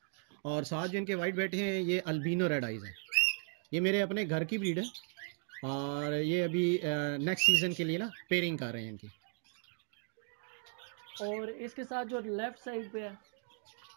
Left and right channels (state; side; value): silent; left; 54 dB below the other